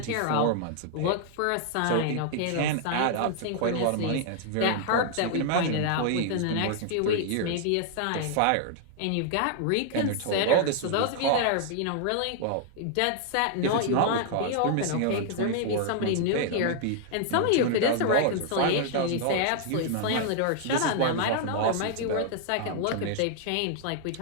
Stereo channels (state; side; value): different; both; correlation 0.00